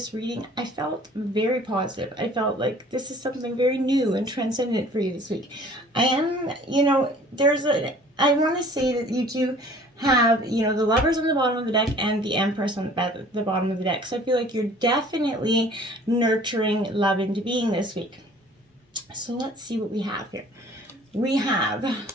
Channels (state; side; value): normal; both; correlation 0.51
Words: reading, I felt very positive. I felt like this is something very new and transcendent for you this week. I want to say that you do have, the Lovers on the bottom of the deck and the Empress on the bottom of the deck. So I feel like you're definitely nurturing love into being this week. So let's see what we have here. We have